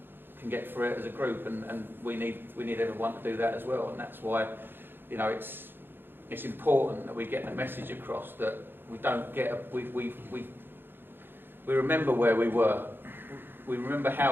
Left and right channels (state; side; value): late; left; 0.10 ms